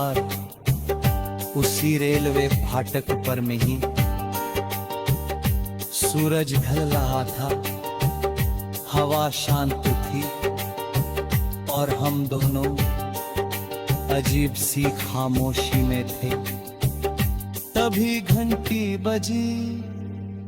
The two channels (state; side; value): identical; both; correlation 1.00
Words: उसी रेलवे फाटक पर में ही, सूरज ढल रहा था, हवा शांत थी और हम दोनों अजीब सी खामोशी में थे। तभी घंटी बजी,